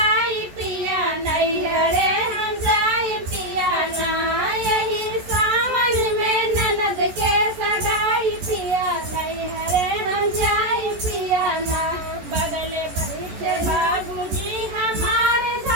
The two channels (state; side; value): late; left; 14 ms